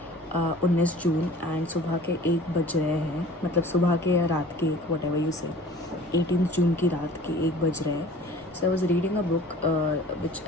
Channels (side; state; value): left; noise; rumble, 28 dB below the sound